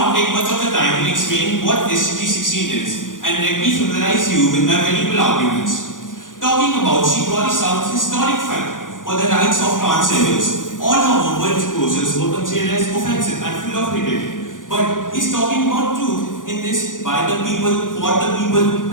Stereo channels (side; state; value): right; late; 0.88 ms